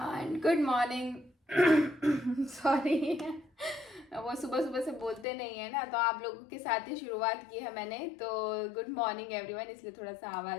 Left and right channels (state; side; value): drops out; right; at 5.2 s